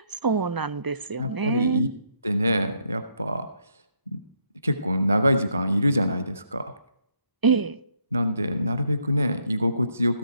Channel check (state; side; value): inverted; both; correlation -0.73